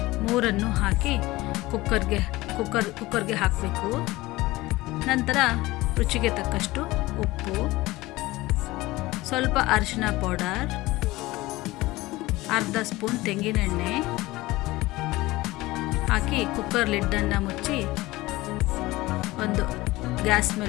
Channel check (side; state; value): right; quieter; 19.4 dB